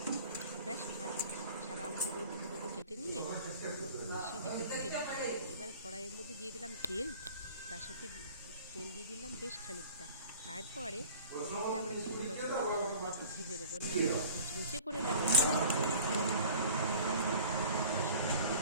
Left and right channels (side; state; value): both; inverted; correlation -0.44